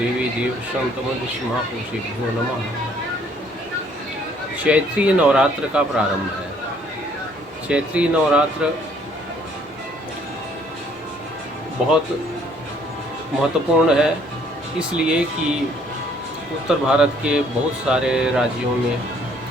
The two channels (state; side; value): normal; both; correlation 0.62